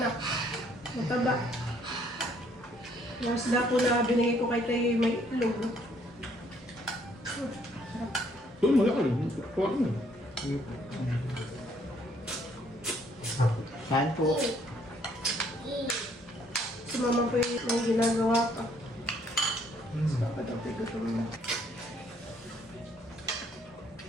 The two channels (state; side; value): normal; both; correlation 0.65